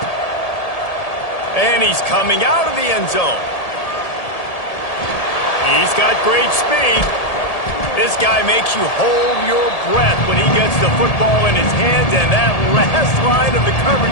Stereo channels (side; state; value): right; late; 1.8 ms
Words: And he's coming out of the end zone. He's got great speed. This guy makes you hold your breath when he gets the football in his hands, and that last line of the